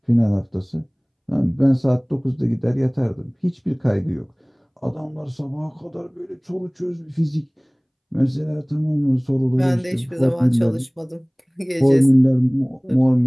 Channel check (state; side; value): identical; both; correlation 1.00